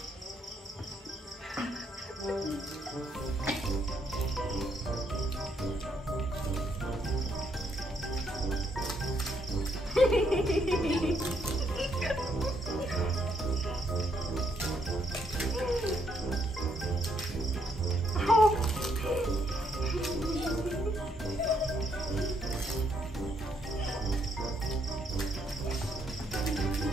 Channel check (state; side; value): normal; both; correlation 0.74